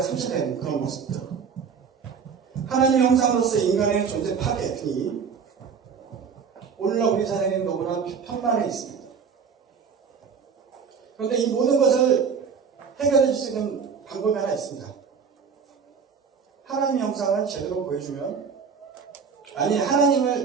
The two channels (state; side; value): quieter; left; 6.2 dB